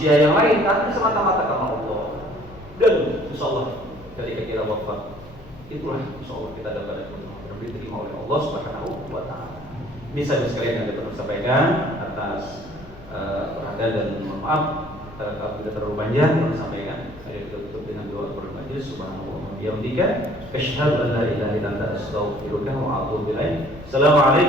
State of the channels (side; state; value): left; noise; hum, 21 dB below the sound